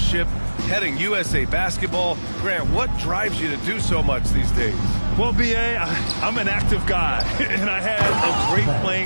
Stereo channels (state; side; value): inverted; both; correlation -1.00